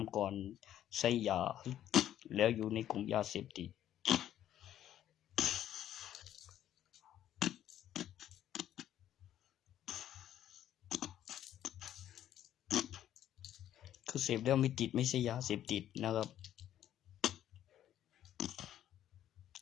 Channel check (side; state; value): right; quieter; 11.5 dB